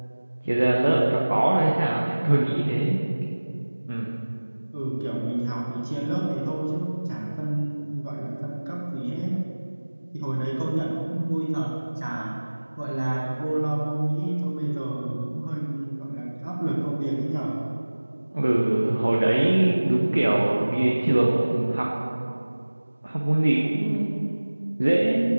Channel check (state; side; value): inverted; both; correlation -1.00